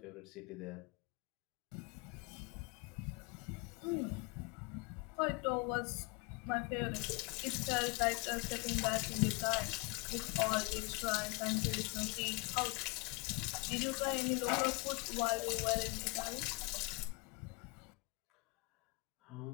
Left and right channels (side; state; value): right; quieter; 27.6 dB